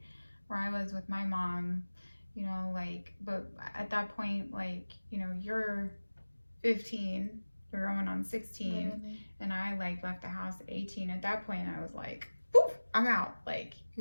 where I was with my mom, you know, like, but at that point, like, you know, you're 15, you're going on 16, literally. And I, like, left the house at 18. At that point, I was like, poof, I'm out. Like,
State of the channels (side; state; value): both; inverted; correlation -1.00